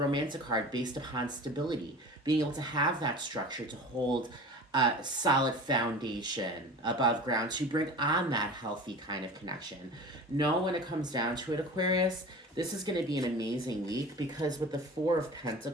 card based upon stability. Being able to have that structure to hold a solid foundation above ground to bring on that healthy kind of connection. Know when it comes down to it, Aquarius, this is going to be an amazing week because with the Four of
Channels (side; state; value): both; normal; correlation 0.36